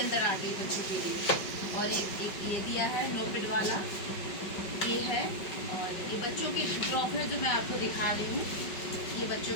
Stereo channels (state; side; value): late; right; 5.2 ms